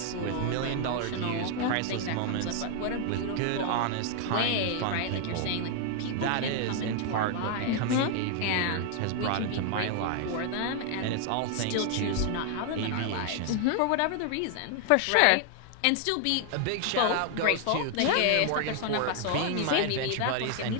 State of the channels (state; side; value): different; both; correlation 0.00